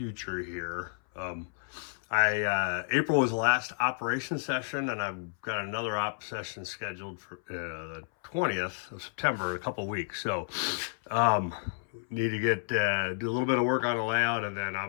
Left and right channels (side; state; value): right; silent; 57 dB below the other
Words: here. April was the last operation session, and I've got another op session scheduled for the 20th of September, a couple weeks. So need to get do a little bit of work on the layout, and then